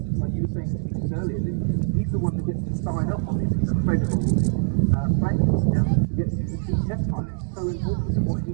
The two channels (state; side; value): silent; left; digital silence